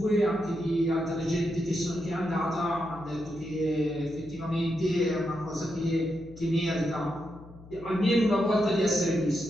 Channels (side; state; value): left; noise; hum, 19 dB below the sound